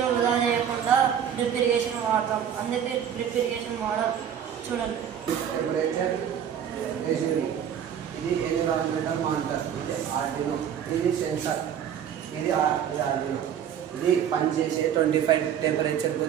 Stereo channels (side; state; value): left; quieter; 9.0 dB